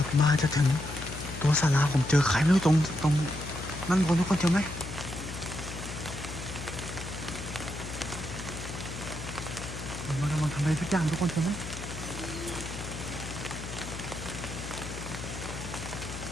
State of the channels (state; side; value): noise; left; hum, 9 dB below the sound